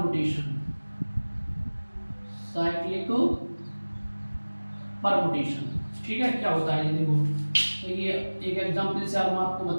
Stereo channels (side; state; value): both; inverted; correlation -1.00